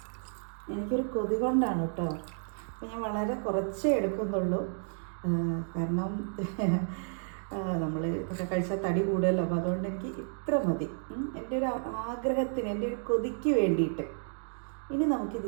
എനിക്കൊരു കൊതി കൊണ്ടാണ് കേട്ടോ. അപ്പോൾ ഞാൻ വളരെ കുറച്ചേ എടുക്കുന്നുള്ളൂ. കാരണം നമ്മൾ ഒക്കെ കഴിച്ചാൽ തടി കൂടുമല്ലോ. അപ്പോൾ അതുകൊണ്ട് എനിക്ക് ഇത്ര മതി, എൻ്റെ ഒരു ആഗ്രഹത്തിന്, എൻ്റെ ഒരു കൊതിക്ക് വേണ്ടിയിട്ട്. ഇനി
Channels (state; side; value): silent; left; digital silence